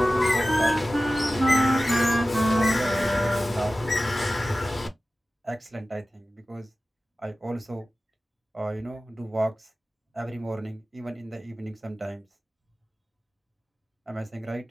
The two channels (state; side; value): normal; both; correlation 0.95